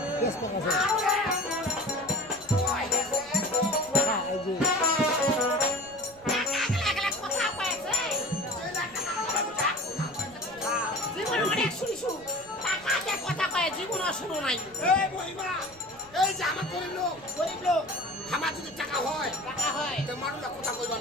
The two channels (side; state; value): left; noise; rumble, 26 dB below the sound